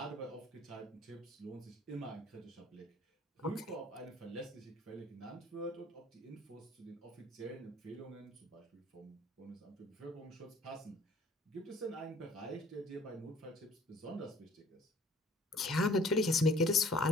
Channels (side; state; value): both; normal; correlation 0.54